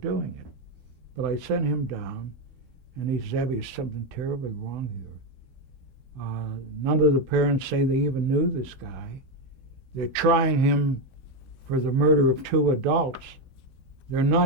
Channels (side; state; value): left; late; 14 ms